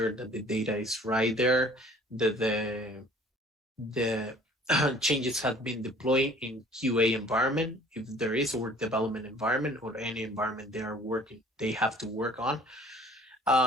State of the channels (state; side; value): normal; both; correlation 0.52